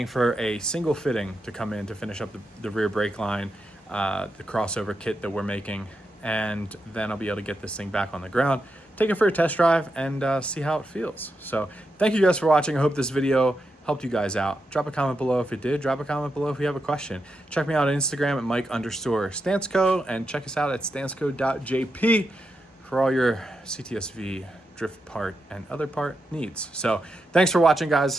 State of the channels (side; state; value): both; normal; correlation 0.86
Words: for a single fitting to come in to finish up the rear brake line, the crossover kit that we're making, and then I'll be able to get this thing back on the ground, take it for a test drive, and see how it feels. So thank you guys for watching. I hope this video helped you guys out. Drop a comment below if it did. Drop a comment below if you have a question. Check me out on Instagram at Mike_Stansco, and check us out at stansco.jp for all your CTS-V drift part and other part needs. So thanks for watching,